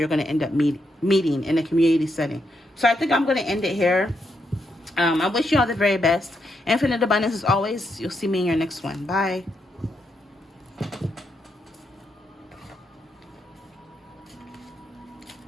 going to end up meeting in a community setting. So I think I'm going to end it here. I wish you all the very best. Infinite abundance as always. You'll see me in your next one. Bye.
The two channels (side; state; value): both; normal; correlation 0.80